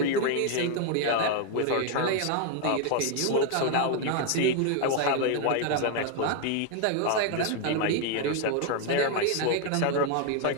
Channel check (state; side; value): different; both; correlation 0.01